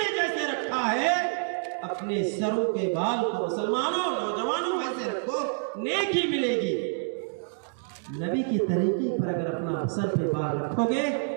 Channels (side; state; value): left; silent; digital silence